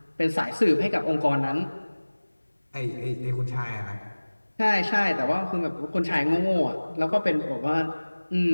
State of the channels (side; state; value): both; inverted; correlation -1.00